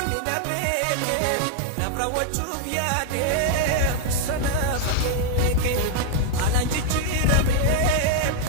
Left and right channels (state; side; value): different; both; correlation -0.01